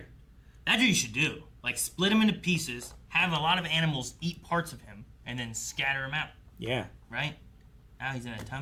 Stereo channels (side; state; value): both; identical; correlation 1.00